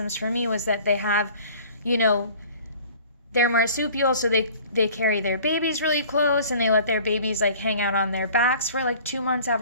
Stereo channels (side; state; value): both; inverted; correlation -0.48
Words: for me was that they have, they're marsupial, so they carry their babies really close, and they let their babies hang out on their backs for 2 months